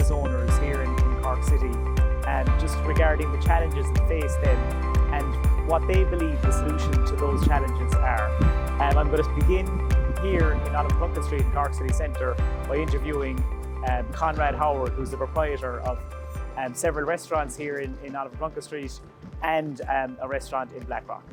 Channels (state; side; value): identical; both; correlation 1.00